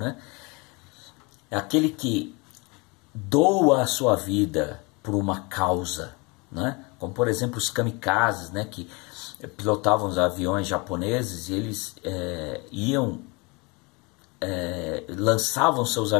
É aquele que doa a sua vida por uma causa. Né? Como, por exemplo, os kamikazes, né? Que pilotavam os aviões japoneses e eles lançavam seus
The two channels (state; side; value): quieter; right; 28.2 dB